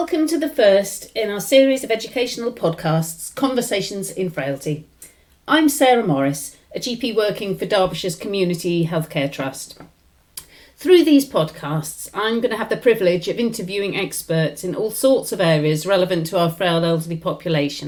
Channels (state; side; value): identical; both; correlation 1.00